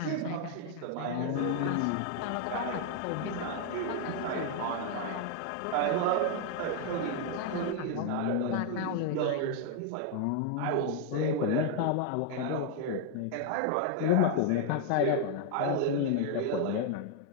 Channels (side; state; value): both; different; correlation 0.00